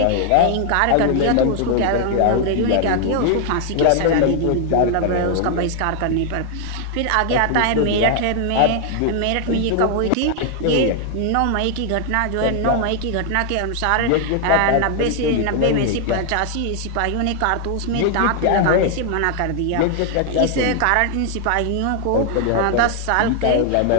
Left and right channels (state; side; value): different; both; correlation 0.00